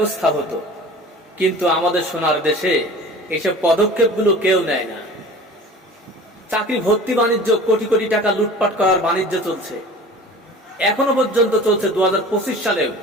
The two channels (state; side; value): normal; both; correlation 0.41